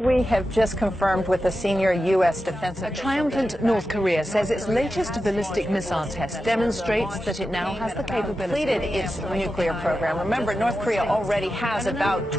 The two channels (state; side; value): normal; both; correlation 0.91